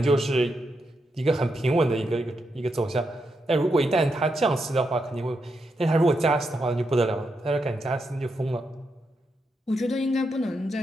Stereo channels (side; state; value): both; normal; correlation 0.84